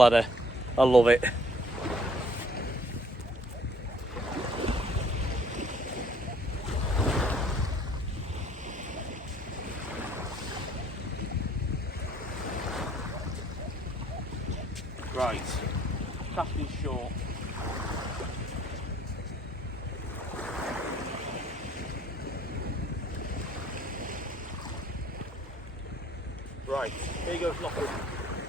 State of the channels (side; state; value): both; normal; correlation 0.58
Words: I love it. Right, casting short. Right, here you go, Lockwood.